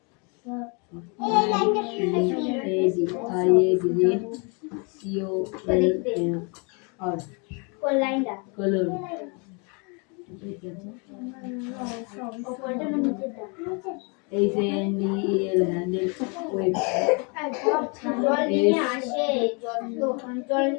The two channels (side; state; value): right; quieter; 33.9 dB